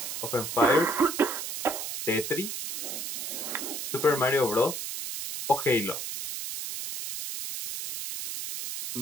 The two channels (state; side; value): noise; right; hiss, 5 dB below the sound